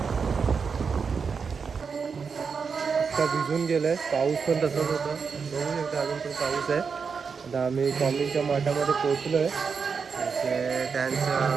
भिजून गेलंय, पाऊस पण तसंच होता, बघू शकता अजून पण पाऊस आहे. आता आम्ही स्वामींच्या मठामध्ये पोहोचलो आहे. त्यांचं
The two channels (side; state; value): left; quieter; 5.7 dB